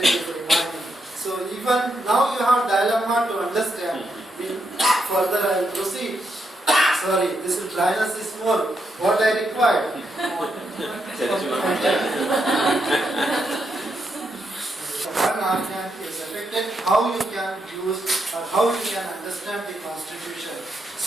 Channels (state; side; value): normal; both; correlation 0.81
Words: is remaining. So even now you have dilemma to understand. Further I will proceed. Sorry, this dryness is more. What I required. One organ is affected, how you can use or how you can understand the constitution.